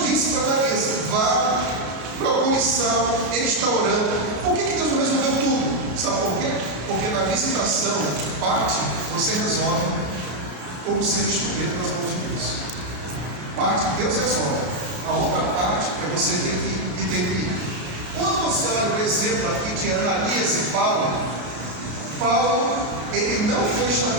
disse para Ananias: vá, procure Saulo, ele está orando. Por que Deus não resolveu tudo? Sabe por quê? Porque na visitação, parte você resolve como ser instrumento das mãos de Deus. Parte Deus resolve, a outra parte é você ter que ir. Quando você olha o exemplo aqui de Ananias e Paulo, ele não foi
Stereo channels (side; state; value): left; late; 33 ms